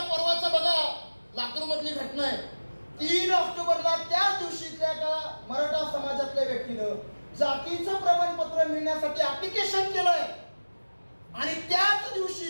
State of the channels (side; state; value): both; inverted; correlation -1.00